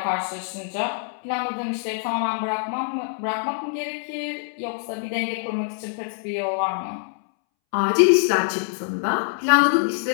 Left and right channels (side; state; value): right; silent; 62 dB below the other